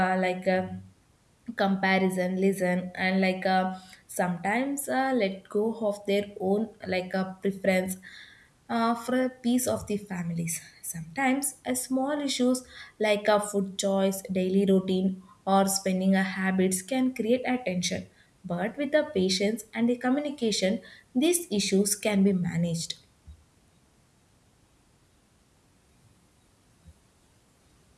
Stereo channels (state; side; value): identical; both; correlation 1.00